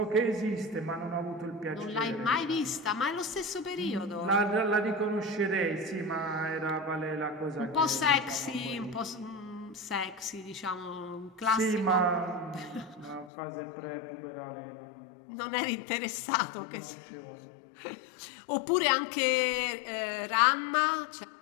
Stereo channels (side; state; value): right; drops out; at 13.3 s